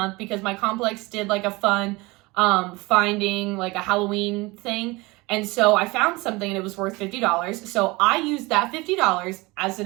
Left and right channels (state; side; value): quieter; left; 23.3 dB